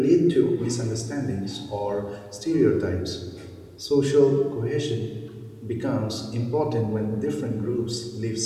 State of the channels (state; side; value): identical; both; correlation 1.00